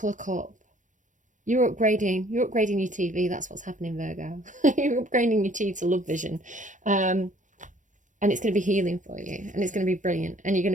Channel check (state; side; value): late; left; 0.37 ms